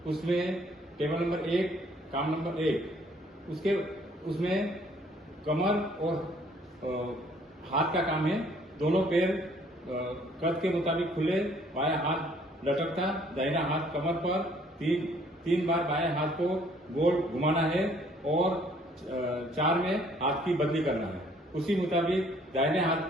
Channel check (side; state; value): both; normal; correlation 0.61